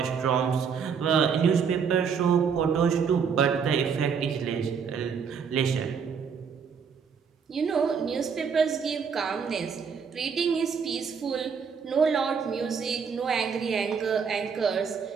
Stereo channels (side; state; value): left; quieter; 6.4 dB